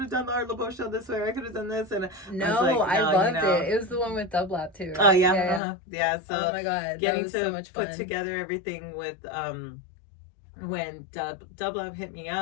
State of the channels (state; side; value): drops out; right; at 5.6 s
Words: have done the Art Laboe show this way, I could have done this, and I loved it. It was the one with Dub Lab too, right? Oh yeah. So oh my god, getting that was to so much fun. Put together everything with when Dub Lab hit me